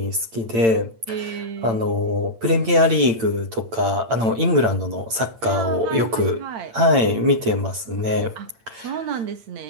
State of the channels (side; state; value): left; late; 8.8 ms